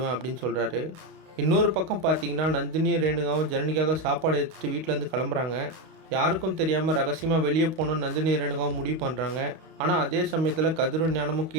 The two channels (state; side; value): late; left; 32 ms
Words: அப்படின்னு சொல்கிறாரு. இன்னொரு பக்கம் பார்த்தீங்கன்னா, நந்தினியும் ரேணுகாவும் ஜனனிக்காக சாப்பாடு எடுத்துகிட்டு வீட்டிலேருந்து கிளம்புறாங்க. யாருக்கும் தெரியாமல் ரகசியமாக வெளியே போகணும்னு நந்தினி ரேணுகாவும் முடிவு பண்ணுறாங்க. ஆனால் அதே சமயத்தில் கதிரும் ஞானமும்